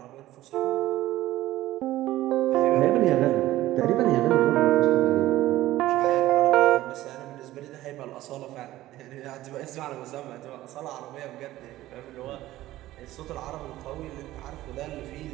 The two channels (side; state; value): left; quieter; 15.7 dB